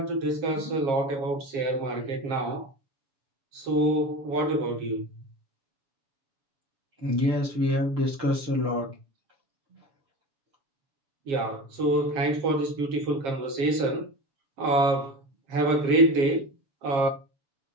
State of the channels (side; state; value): left; late; 7.4 ms